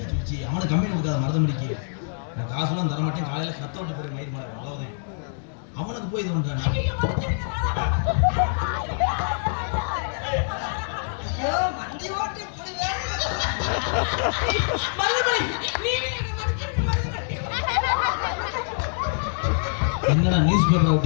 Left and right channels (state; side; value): silent; right; digital silence